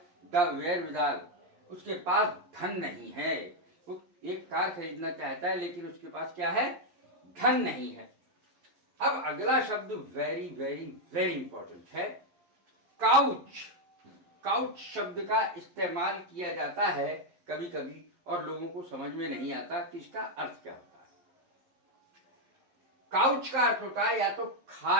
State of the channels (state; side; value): late; left; 11 ms